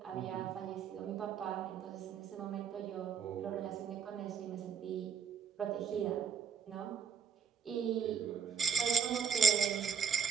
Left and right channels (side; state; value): left; quieter; 6.7 dB